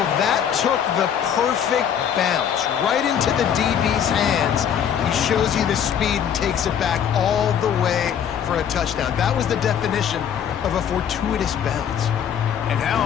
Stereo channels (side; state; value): right; quieter; 8.7 dB